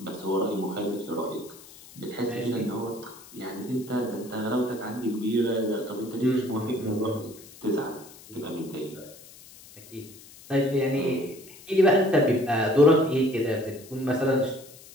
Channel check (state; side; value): noise; left; hiss, 20 dB below the sound